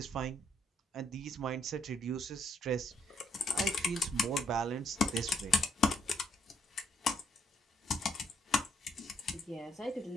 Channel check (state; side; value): normal; both; correlation 0.70